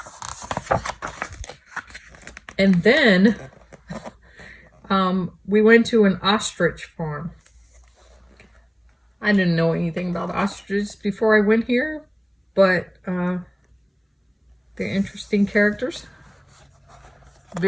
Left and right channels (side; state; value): both; identical; correlation 1.00